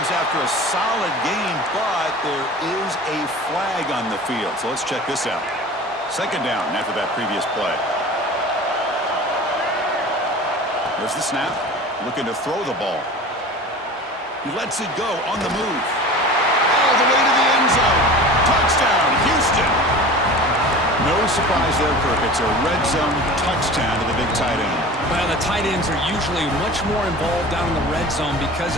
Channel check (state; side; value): normal; both; correlation 0.37